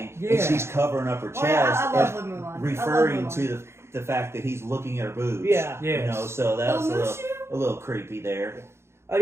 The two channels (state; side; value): late; left; 0.13 ms